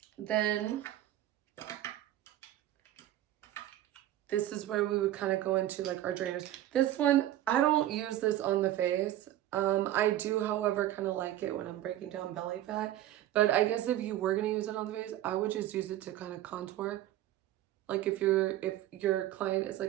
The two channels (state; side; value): quieter; left; 13.5 dB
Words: then this is where we would kind of go into like our drainers. This one, I don't use this on the face. I do, however, kind of like it when I'm breaking down belly fat. But I guess if you were going to use it on the face, I would just use it to kind of contour. Like if your client is